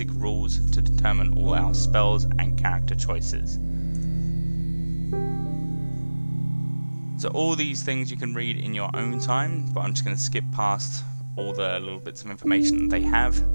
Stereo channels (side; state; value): both; inverted; correlation -1.00